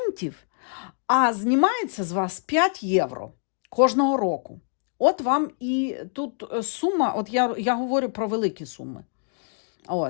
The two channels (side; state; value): right; silent; 62 dB below the other